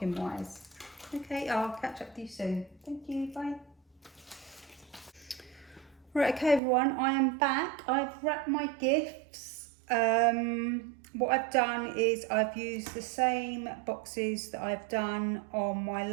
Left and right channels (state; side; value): drops out; left; at 6.6 s